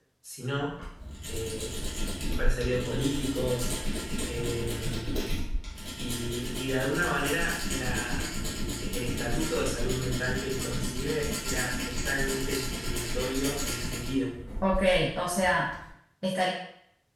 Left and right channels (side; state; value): both; identical; correlation 1.00